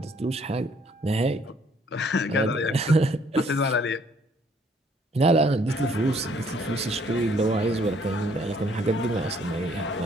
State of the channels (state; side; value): normal; both; correlation 0.64